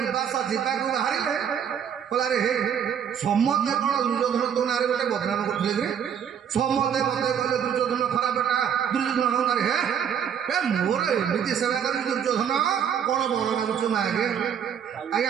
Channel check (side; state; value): left; quieter; 8.3 dB